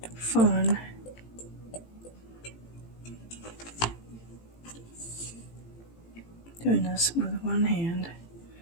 fun. Doing this with one hand.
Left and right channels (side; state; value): right; late; 18 ms